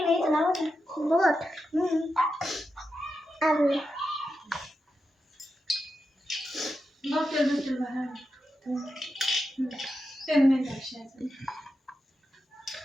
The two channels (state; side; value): normal; both; correlation 0.88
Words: ना, इथं लावा ना. बोट. आलं.